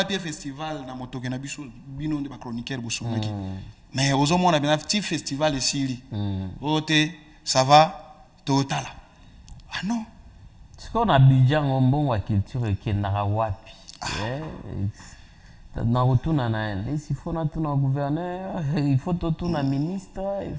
festival, dans le bino de chroniqueur. Mais aux hommes, on a bien un petit festival ici. Ça va, total. Ah non. Ce qu'on a Abidjan, on bon la culture qui est narawapi. Dans retour il faut retourner au gouverneur, il faut retourner au ministre, il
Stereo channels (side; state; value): both; identical; correlation 1.00